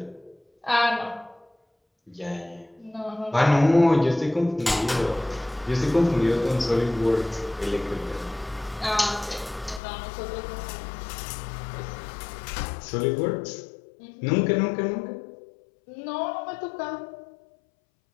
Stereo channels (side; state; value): right; drops out; at 9.8 s